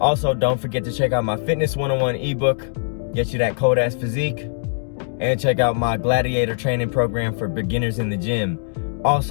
Also, don't forget to check out my Fitness 101 ebook, get you that cold ass physique. And check out my gladiator training program for beginners in the gym.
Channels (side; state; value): right; silent; digital silence